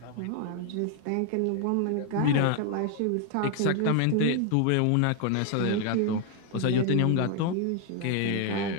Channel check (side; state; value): both; different; correlation 0.01